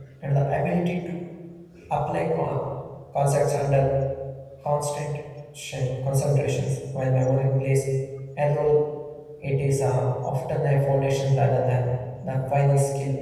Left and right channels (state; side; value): identical; both; correlation 1.00